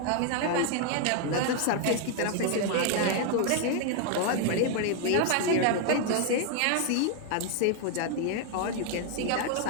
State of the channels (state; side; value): different; both; correlation 0.00